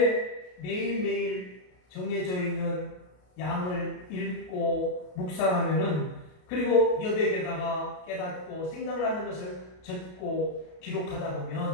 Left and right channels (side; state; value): right; late; 33 ms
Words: 매일매일 정해져 있는 양을 읽고 묵상하면은 그리고 여백에다가 깨닫고 생각나는 것을 적고 기록하다